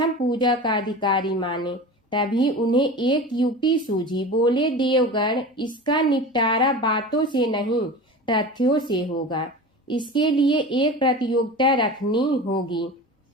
पूजा का अधिकारी माने। तभी उन्हें एक युक्ति सूझी। बोले, देवगण, इसका निपटारा बातों से नहीं तथ्यों से होगा। इसके लिए एक प्रतियोगिता रखनी होगी,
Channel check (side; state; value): both; normal; correlation 0.33